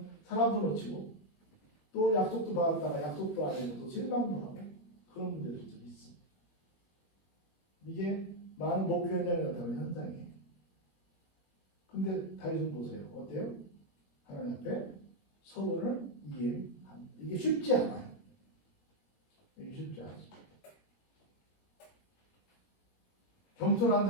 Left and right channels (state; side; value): late; right; 21 ms